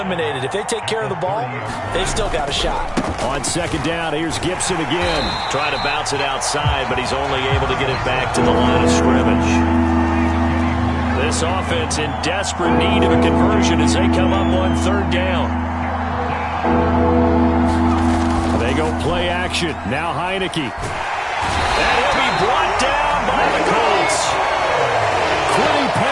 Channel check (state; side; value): identical; both; correlation 1.00